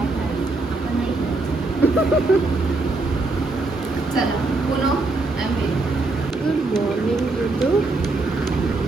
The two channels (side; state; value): left; quieter; 3.3 dB